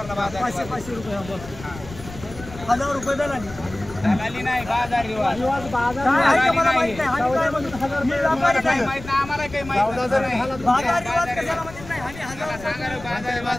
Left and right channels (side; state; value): left; noise; rumble, 15 dB below the sound